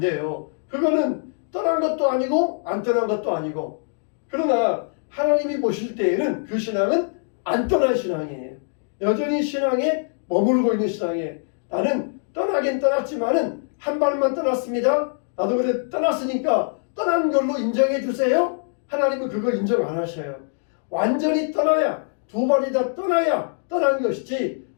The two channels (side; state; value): right; silent; digital silence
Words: 그거는 떠난 것도 아니고 안 떠난 것도 아니고, 그러나 하나님이 보실 때에는 그 신앙은 안 떠난 신앙이에요. 여전히 신앙에 머물고 있는 신앙이에요. 나는 떠나긴 떠났지만은 한 발만 떠났습니다. 나도 그래 떠났으니까 떠난 걸로 인정해 주세요. 하나님은 그거 인정 안 하셔요. 완전히 떠나야, 두 발이 다 떠나야 떠난 것이지,